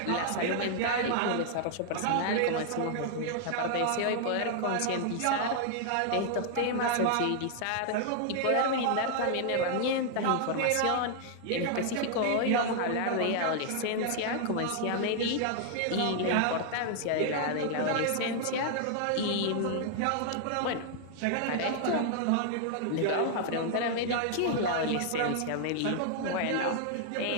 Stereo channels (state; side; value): different; both; correlation 0.00